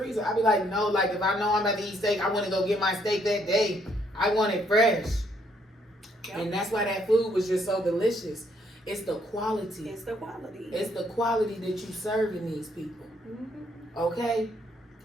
I be like, no, like if I know I'm about to eat steak, I want to go get my steak that day. I want it fresh. Yep. And that's why that food was just so delicious. It's the quality. It's the quality. It's the quality that you serving these people. Mm-hmm. Okay?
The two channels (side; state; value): both; normal; correlation 0.70